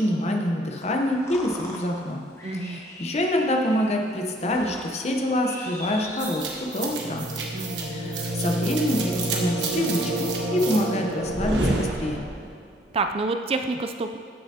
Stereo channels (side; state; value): both; normal; correlation 0.61